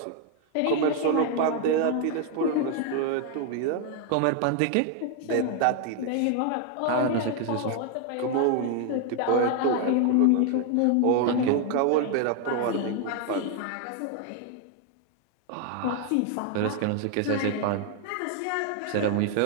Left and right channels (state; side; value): different; both; correlation 0.00